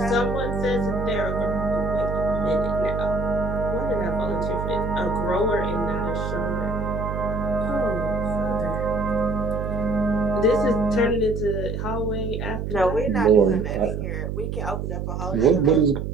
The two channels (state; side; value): noise; right; hum, 4 dB below the sound